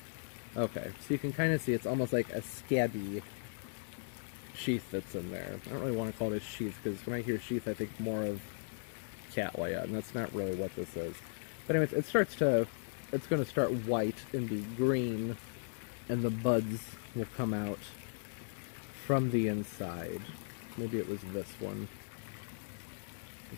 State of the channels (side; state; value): right; silent; 53 dB below the other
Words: Okay, so you can kind of see it's almost like a scabby sheath that's in there. I don't really want to call it a sheath, because when I hear sheath I think more of cattleya, and that's not really what this is. But anyways, it's going to start white and be green, and the buds will come out from the inside. Maybe it was this one.